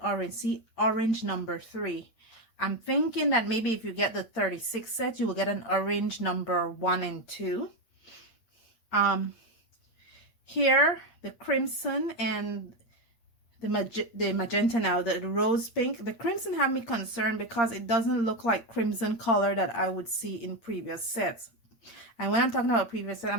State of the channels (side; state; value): right; late; 8.6 ms